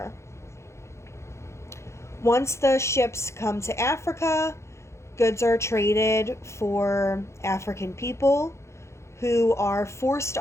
Once the ships come to Africa, goods are traded for African people who are forced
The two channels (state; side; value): late; right; 0.13 ms